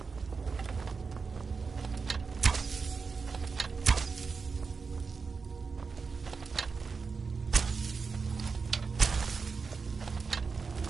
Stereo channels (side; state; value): left; quieter; 4.9 dB